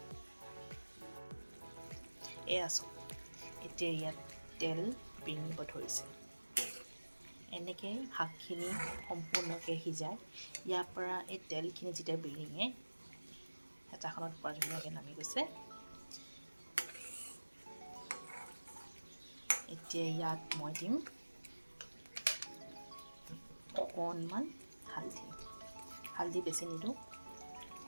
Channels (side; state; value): both; inverted; correlation -1.00